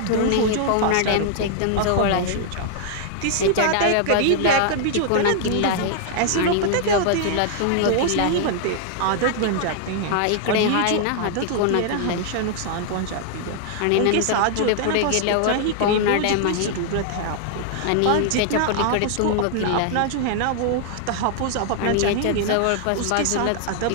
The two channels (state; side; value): different; both; correlation 0.00